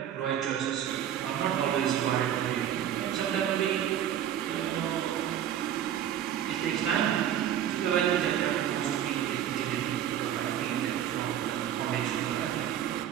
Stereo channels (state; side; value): quieter; left; 10.4 dB